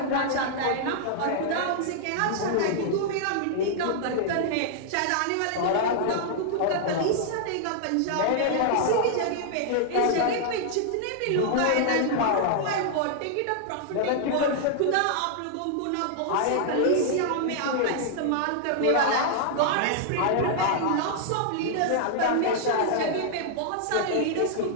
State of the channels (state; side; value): different; both; correlation -0.01